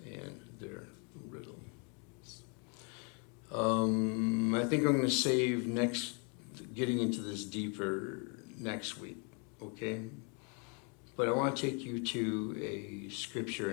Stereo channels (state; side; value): quieter; right; 36.9 dB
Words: and their riddles. I think I'm going to save getting into this deeper next week, okay? But I want to take you to a scripture